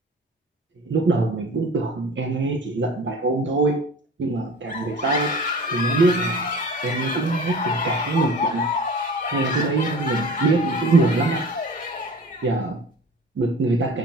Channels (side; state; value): both; normal; correlation 0.40